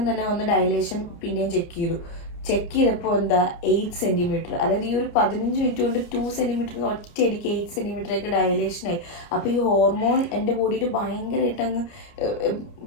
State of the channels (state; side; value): late; right; 29 ms